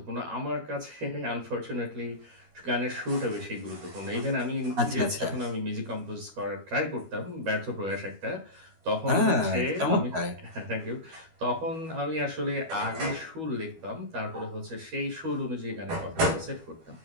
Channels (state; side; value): late; left; 12 ms